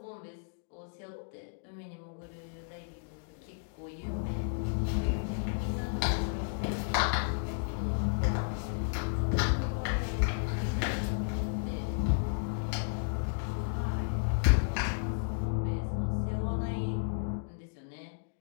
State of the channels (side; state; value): right; silent; digital silence